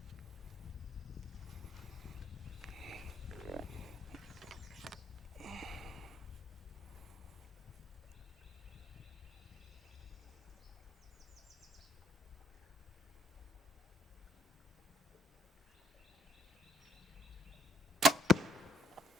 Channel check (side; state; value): both; normal; correlation 0.64